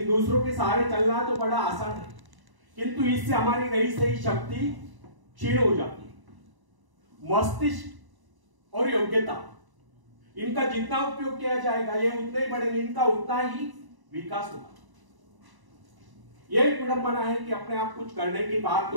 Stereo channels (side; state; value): left; late; 1.0 ms